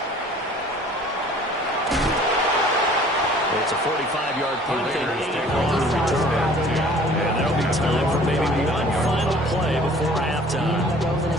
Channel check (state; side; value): normal; both; correlation 0.51